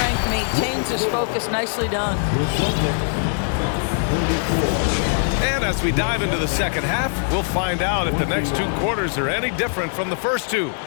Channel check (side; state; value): right; silent; 62 dB below the other